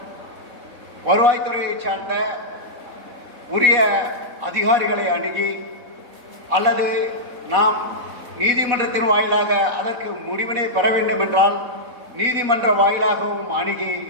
வருவாய்த்துறையை சார்ந்த உரிய அதிகாரிகளை அணுகி அல்லது நாம் நீதிமன்றத்தின் வாயிலாக அதற்கு முடிவினை பெற வேண்டும் என்றால் நீதிமன்ற வாயிலாகவும் அணுகி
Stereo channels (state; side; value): late; left; 3.7 ms